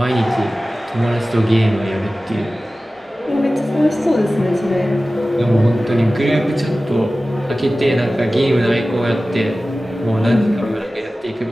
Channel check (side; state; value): both; normal; correlation 0.96